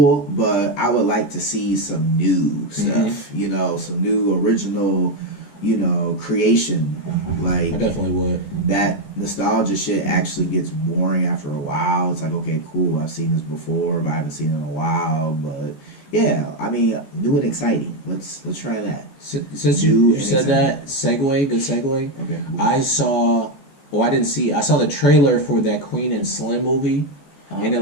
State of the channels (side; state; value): right; late; 14 ms